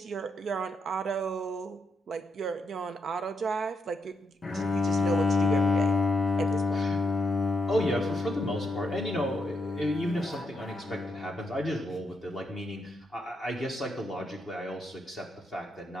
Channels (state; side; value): normal; both; correlation 0.80